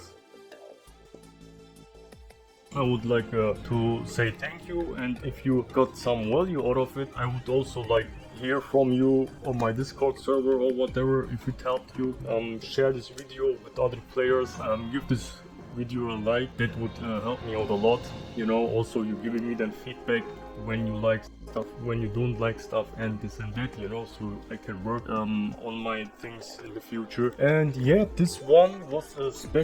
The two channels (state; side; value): identical; both; correlation 1.00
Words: I would like to say thank you, and if you got some value out of it, I would also like hear from you on my Discord server or whatever. If it helped you, share this video with other players, give this video a like. That would help me out a lot, you know. Also, you giving me that feedback when you like stuff, when you don't like stuff, and this and that, you know, so I can work on my things in the future. And yeah, this one was a